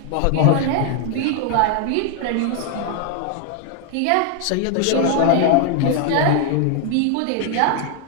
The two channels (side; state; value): both; different; correlation 0.00